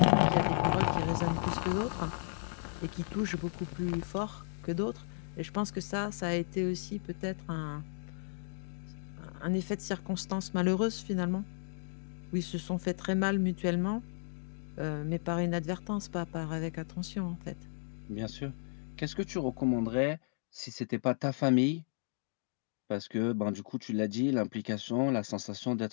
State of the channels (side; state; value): right; silent; digital silence